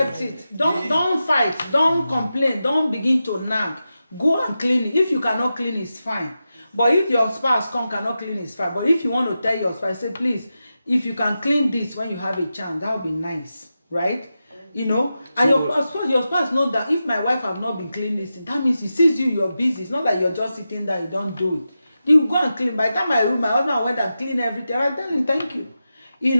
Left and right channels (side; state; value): both; inverted; correlation -0.91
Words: it. Don't fight, don't complain, don't begin to nag. Go and clean it. If you cannot clean, it's fine. But if your spouse cannot clean, it's fine. But if you want to tell your spouse, say, please, if you can clean this when you have a chance, that would be nice, right? You know, and your spouse knows that if my wife have not been cleaning this, that means he sees you're busy. It's not like you're just sitting there, you don't do it. You go and clean. By the time my husband went and clean everything, I tell him thank you. You